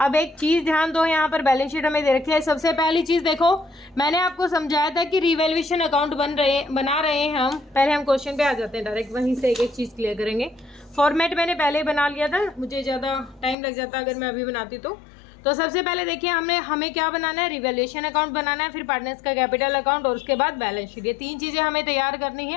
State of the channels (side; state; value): right; drops out; at 13.6 s